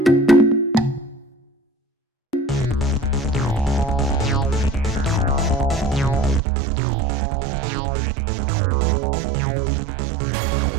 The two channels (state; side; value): drops out; left; at 6.4 s